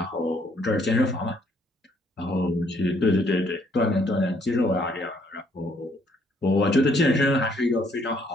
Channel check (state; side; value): normal; both; correlation 0.67